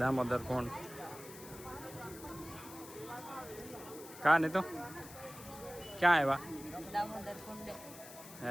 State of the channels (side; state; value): left; noise; hiss, 15 dB below the sound